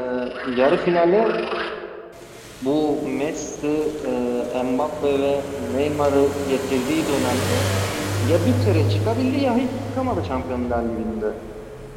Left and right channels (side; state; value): both; identical; correlation 1.00